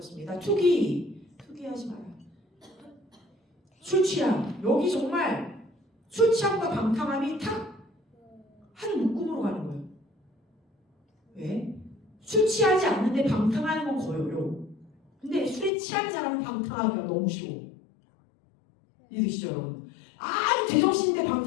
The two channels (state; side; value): drops out; right; at 15.7 s